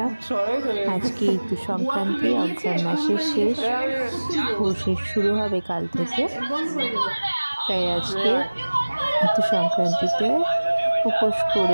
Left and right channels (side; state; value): both; inverted; correlation -1.00